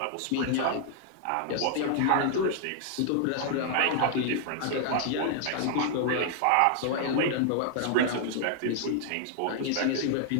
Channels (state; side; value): different; both; correlation 0.00